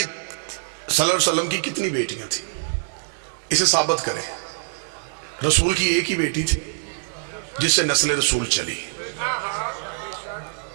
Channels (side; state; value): left; silent; 58 dB below the other